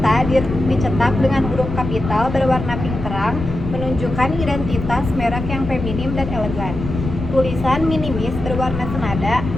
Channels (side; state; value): left; noise; rumble, 6 dB below the sound